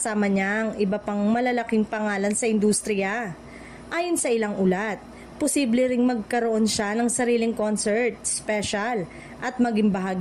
niya ang iba pang malalaking pangalan sa industriya. Ayon sa ilang ulat, posible ring magkaroon siya ng sariling concert, special, at maging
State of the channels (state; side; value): identical; both; correlation 1.00